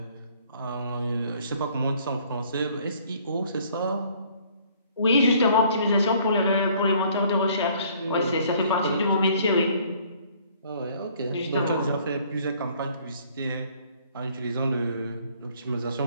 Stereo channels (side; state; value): both; inverted; correlation -0.59